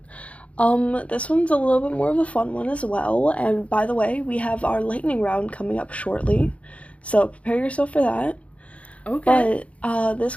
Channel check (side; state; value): right; late; 0.064 ms